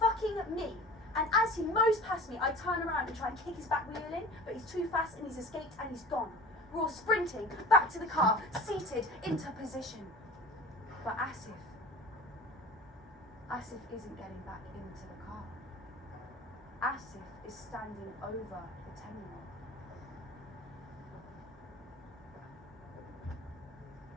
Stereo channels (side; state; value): both; normal; correlation 0.41